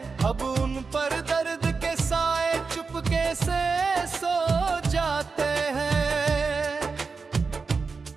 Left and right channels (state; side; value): quieter; left; 4.7 dB